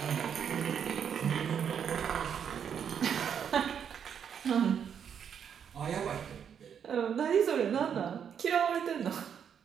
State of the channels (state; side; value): quieter; left; 7.9 dB